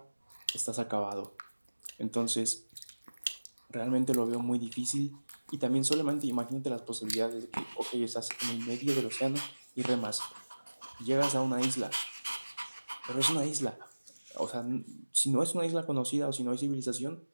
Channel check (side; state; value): both; inverted; correlation -1.00